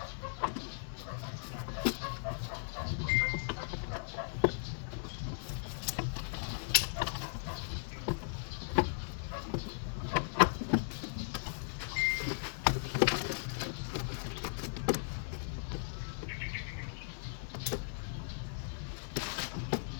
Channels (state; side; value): silent; right; 53 dB below the other